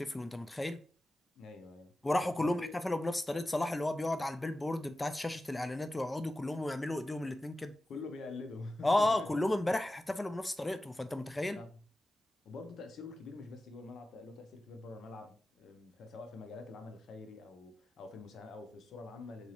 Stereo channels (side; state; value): both; normal; correlation 0.94